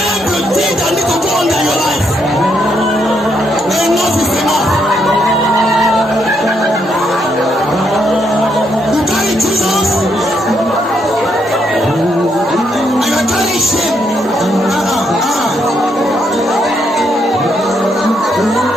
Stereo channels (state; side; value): normal; both; correlation 0.76